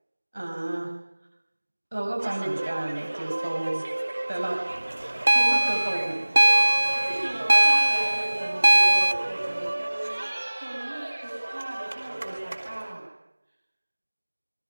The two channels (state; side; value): inverted; both; correlation -1.00